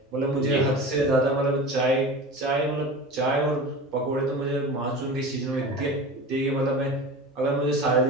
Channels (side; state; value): both; normal; correlation 0.33